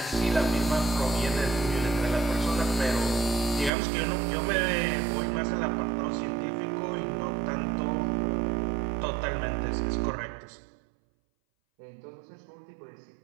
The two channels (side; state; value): left; drops out; at 3.7 s